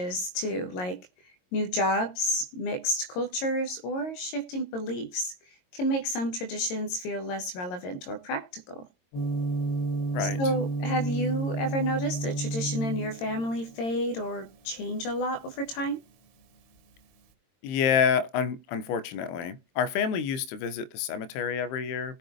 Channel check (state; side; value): late; right; 22 ms